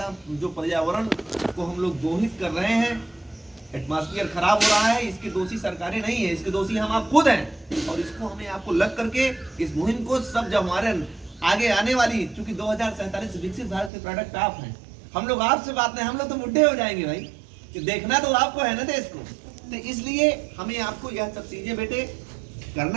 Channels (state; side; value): drops out; left; at 13.9 s